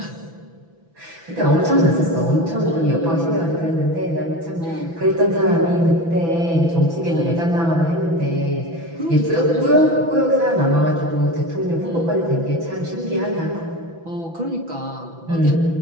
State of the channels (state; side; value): late; left; 6.0 ms